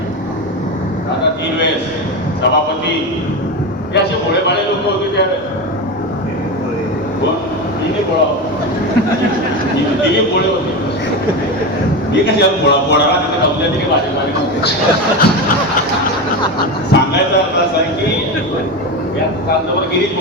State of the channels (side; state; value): both; normal; correlation 0.19